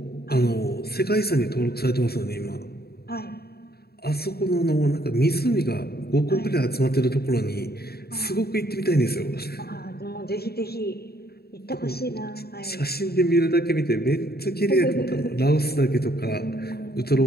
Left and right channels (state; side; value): late; right; 0.46 ms